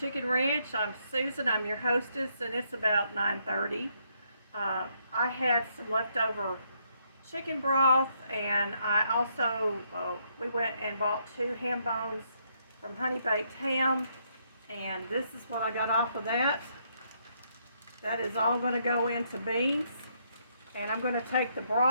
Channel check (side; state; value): both; inverted; correlation -0.73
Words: Ranch. I'm Susan. I'm your hostess, and it's about 9:30. I had some leftover chicken broth, and I also we went and bought 2 ham bones from Honey Baked Ham, and this is what I got off of that. That is all going to go into beans, and I'm going to take the